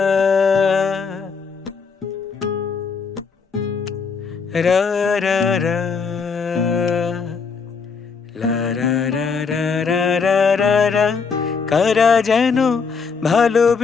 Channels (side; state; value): right; quieter; 5.4 dB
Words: রা রা রা লা রা রা রা রা রা রা রা। কারা যেন